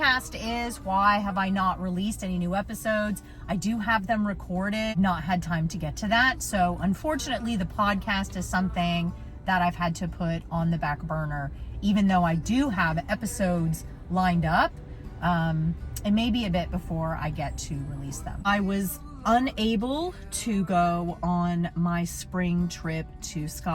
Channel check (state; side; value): identical; both; correlation 1.00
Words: is. Why have I not released any new episodes? I do have them recorded, not had time to get to that. So unfortunately, the podcast is something that I've had to put on the back burner, even though I do have episodes lined up. It may be a bit before I get to release them. I was unable to go on my spring trip to